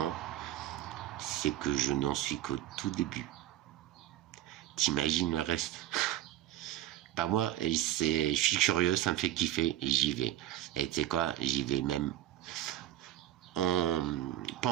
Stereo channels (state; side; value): quieter; left; 13.2 dB